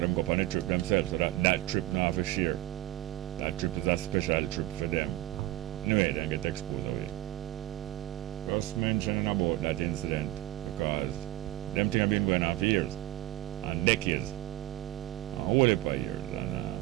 them go on a trip themselves, so that trip not have a share. That trip is a special trip for them. Anyway, they get exposed away. Just mentioning about that incident because them things have been going on for years and decades, a whole heap of years.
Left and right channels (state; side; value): quieter; left; 16.1 dB